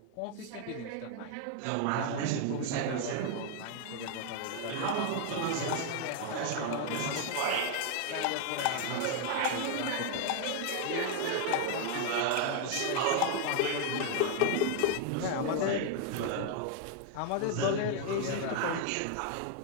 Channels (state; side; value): different; both; correlation 0.01